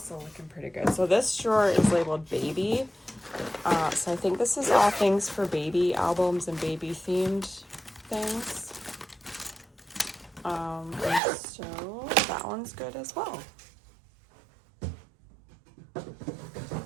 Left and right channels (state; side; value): drops out; left; at 11.2 s